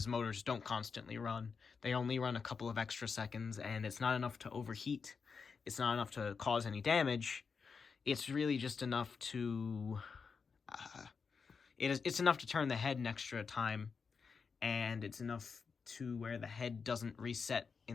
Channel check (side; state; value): right; quieter; 5.4 dB